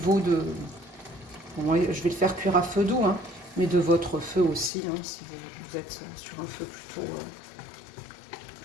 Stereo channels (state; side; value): drops out; right; at 4.7 s